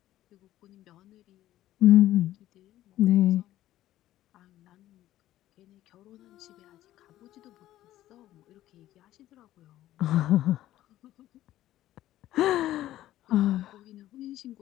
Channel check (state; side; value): quieter; right; 14.0 dB